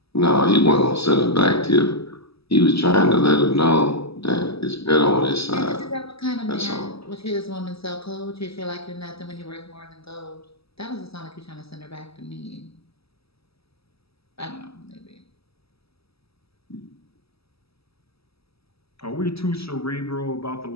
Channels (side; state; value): right; late; 0.77 ms